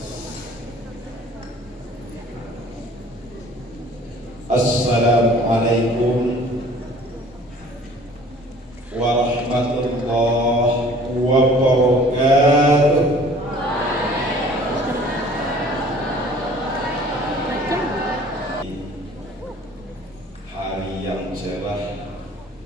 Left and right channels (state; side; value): normal; both; correlation 0.51